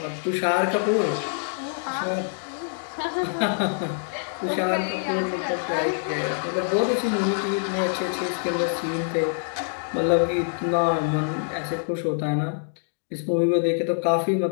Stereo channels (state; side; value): silent; right; digital silence